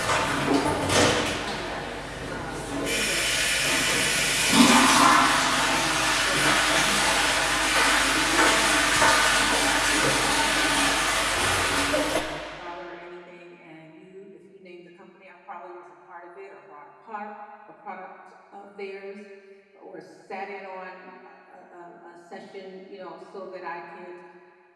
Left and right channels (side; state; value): both; identical; correlation 1.00